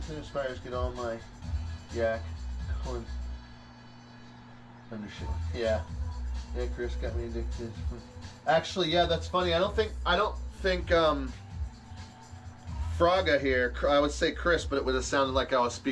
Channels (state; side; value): identical; both; correlation 1.00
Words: and aspires get all my yak corn undershell. Yeah. Yeah, Chris got me addicted. Actually, yeah, that's funny. I don't think Fraga here, I would say Chris, but it would have sounded like I was